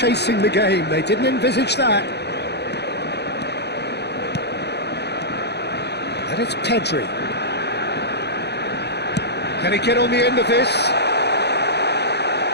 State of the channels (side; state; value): right; late; 0.49 ms